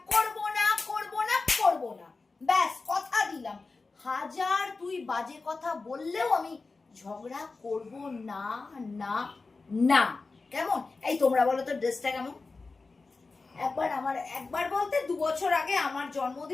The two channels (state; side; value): quieter; right; 3.9 dB